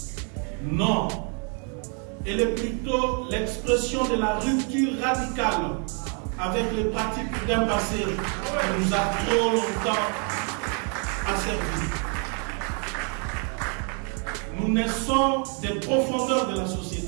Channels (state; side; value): quieter; left; 39.2 dB